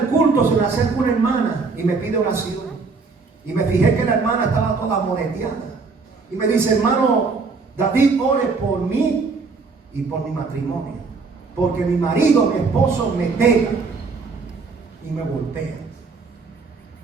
culto se me acerca una hermana y me pide oración. Y me fijé que la hermana estaba toda moreteada. Y me dice: hermano David, ore por mí y por mi matrimonio. Porque mi marido, mi esposo, me pega y me golpea.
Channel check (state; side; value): quieter; left; 4.5 dB